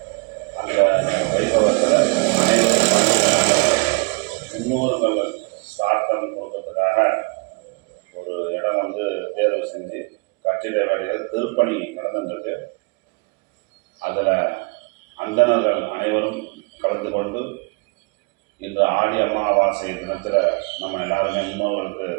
அந்த வைபவத்தில் அனைவரும் முன்னோர்கள் சிராத்தம் கொடுக்கறதுக்காக ஒரு இடம் வந்து தேர்வு செஞ்சு கட்டிட வேலைகள் திருப்பணி நடந்துருக்கு. அதில் அந்தணர்கள் அனைவரும் கலந்து கொண்டு இன்று ஆடி அமாவாசை தினத்தில் நம்ம எல்லாருமே முன்னோர்களுக்கு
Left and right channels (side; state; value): left; quieter; 31.8 dB